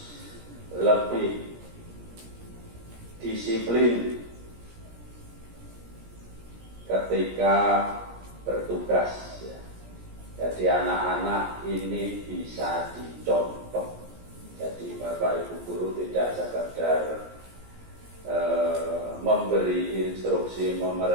lebih disiplin ketika bertugas. Jadi anak-anak ini bisa dicontoh. Jadi Bapak Ibu guru tidak sekedar memberi instruksi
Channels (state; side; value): late; left; 17 ms